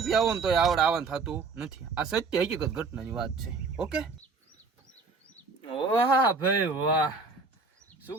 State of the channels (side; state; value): left; quieter; 4.3 dB